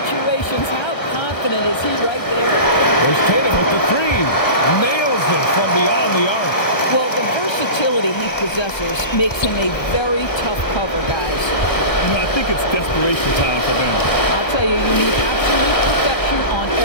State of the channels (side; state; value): right; late; 1.3 ms